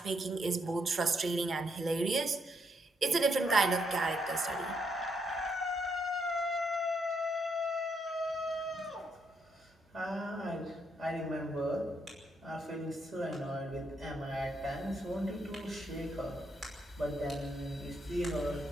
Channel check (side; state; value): both; normal; correlation 0.77